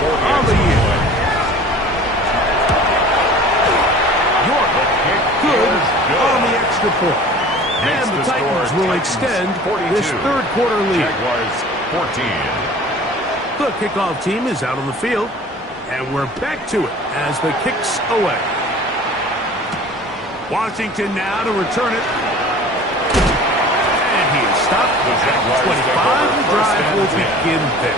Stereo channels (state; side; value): normal; both; correlation 0.44